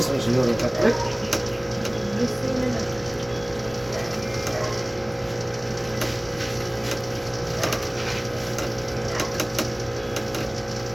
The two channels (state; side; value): noise; left; rumble, 22 dB below the sound